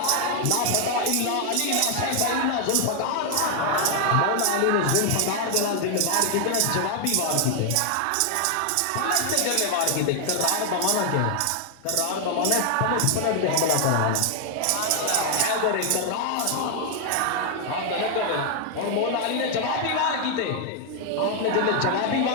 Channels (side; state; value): both; different; correlation 0.00